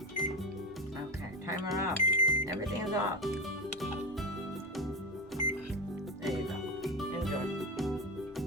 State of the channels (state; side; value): normal; both; correlation 0.18